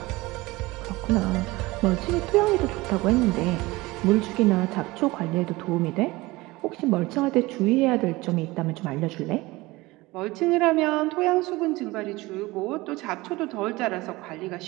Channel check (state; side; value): quieter; left; 20.9 dB